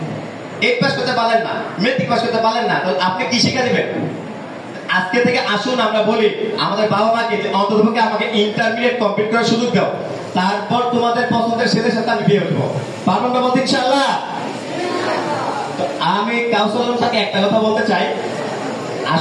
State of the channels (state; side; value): identical; both; correlation 1.00